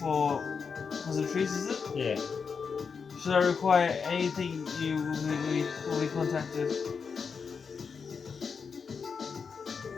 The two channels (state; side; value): quieter; right; 5.7 dB